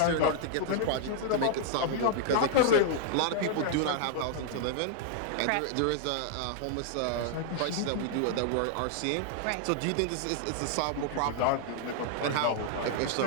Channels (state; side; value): different; both; correlation 0.00